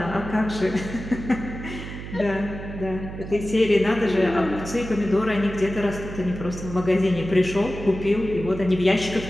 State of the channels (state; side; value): noise; right; hum, 10 dB below the sound